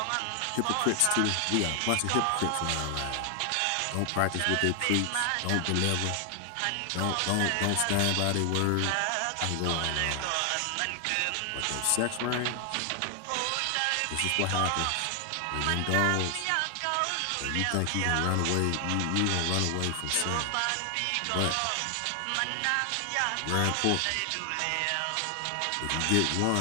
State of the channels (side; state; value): both; different; correlation 0.00